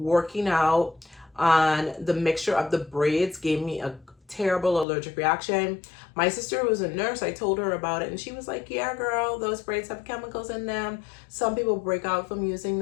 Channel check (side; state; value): right; drops out; at 4.9 s